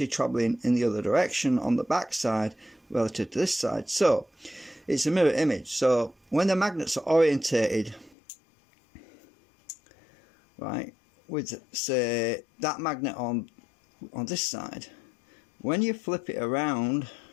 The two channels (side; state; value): right; drops out; at 8.2 s